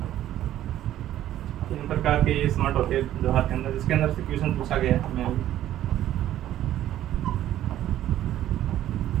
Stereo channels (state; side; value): quieter; left; 12.6 dB